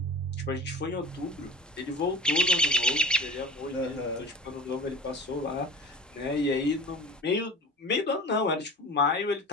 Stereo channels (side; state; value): both; normal; correlation 0.36